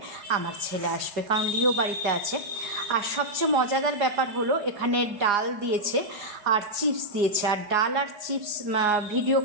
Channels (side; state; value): left; late; 4.9 ms